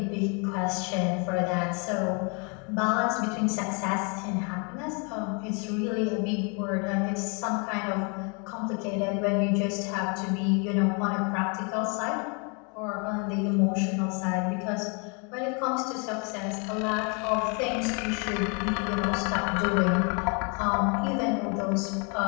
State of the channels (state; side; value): quieter; right; 34.9 dB